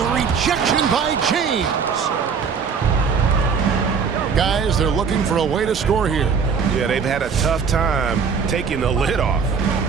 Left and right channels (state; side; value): quieter; left; 6.0 dB